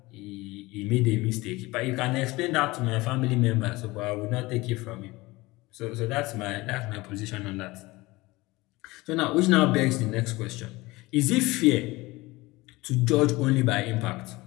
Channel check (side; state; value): right; quieter; 21.2 dB